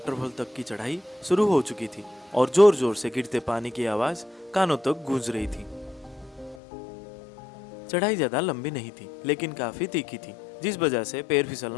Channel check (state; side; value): drops out; right; at 6.6 s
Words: तक की चढ़ाई शुरू हो चुकी थी और जोर जोर से गिरते पानी की आवाज कानों तक गूंज रही थी। चढ़ाई ज्यादा लंबी नहीं थी, लेकिन काफी तीखी थी, जिस वजह से पैर